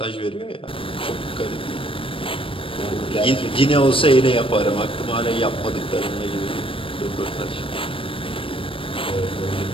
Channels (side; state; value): right; late; 0.25 ms